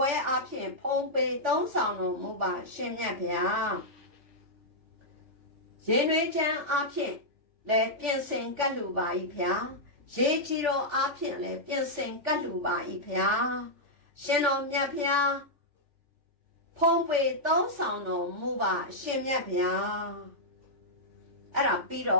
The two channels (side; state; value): left; late; 3.5 ms